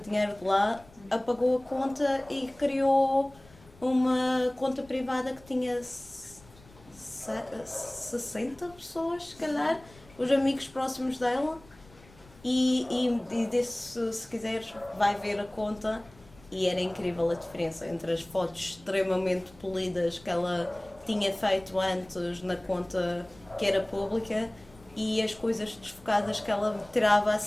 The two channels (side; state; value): left; noise; rumble, 25 dB below the sound